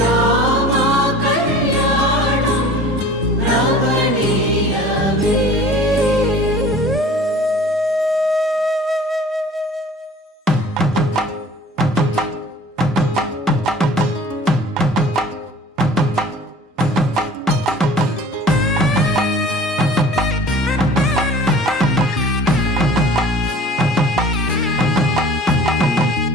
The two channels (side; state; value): both; normal; correlation 0.45